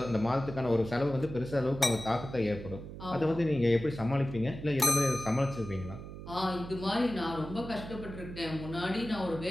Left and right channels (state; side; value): noise; right; hum, 11 dB below the sound